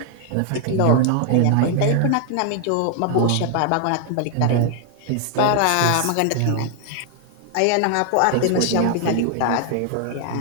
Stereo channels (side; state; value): both; different; correlation 0.00